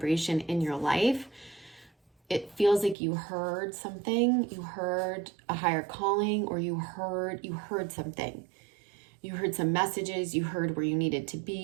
in your life. It feels like you heard something, you heard a higher calling, or you heard something. You heard some messages, you heard where you needed to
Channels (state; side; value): drops out; left; at 3.0 s